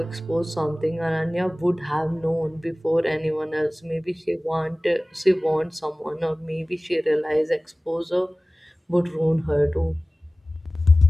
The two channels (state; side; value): normal; both; correlation 0.98